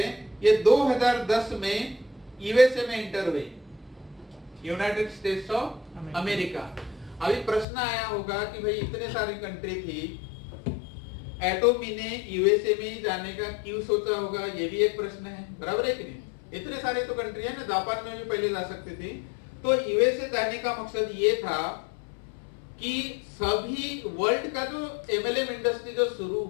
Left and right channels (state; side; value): drops out; right; at 7.7 s